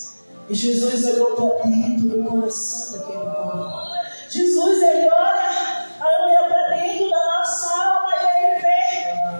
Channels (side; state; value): both; inverted; correlation -1.00